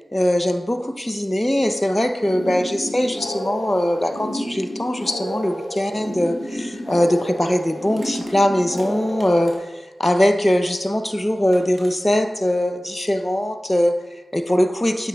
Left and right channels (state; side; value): normal; both; correlation 0.97